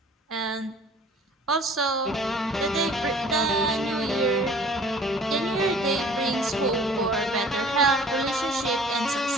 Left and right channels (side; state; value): both; normal; correlation 0.50